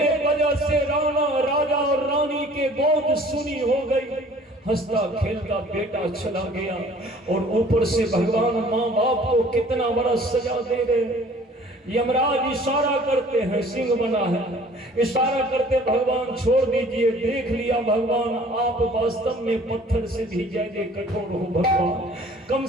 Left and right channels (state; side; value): normal; both; correlation 0.52